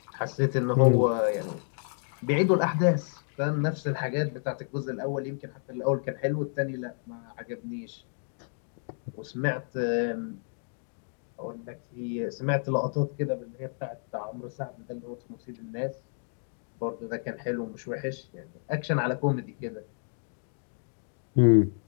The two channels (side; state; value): right; silent; 58 dB below the other